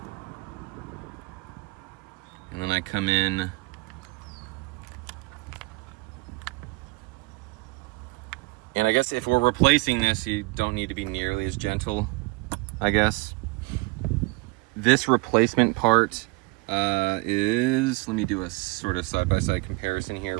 And then I come in and I guess if we're replacing this, you don't need to be nearly as gentle, I guess. This replacement part is, let me do a sort of side-by-side comparison here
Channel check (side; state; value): left; quieter; 25.3 dB